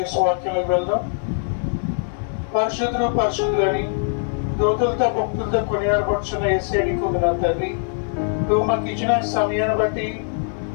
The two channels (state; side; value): silent; right; 56 dB below the other